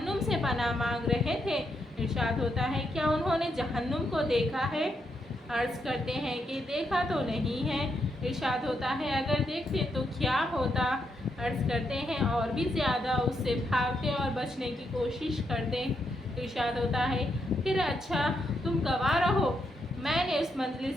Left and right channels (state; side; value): normal; both; correlation 0.80